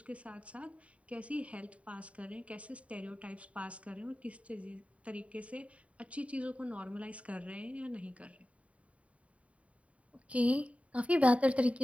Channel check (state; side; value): late; left; 0.065 ms